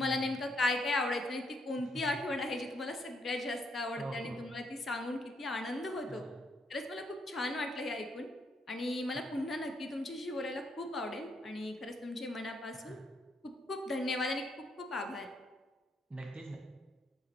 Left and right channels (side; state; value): both; normal; correlation 0.74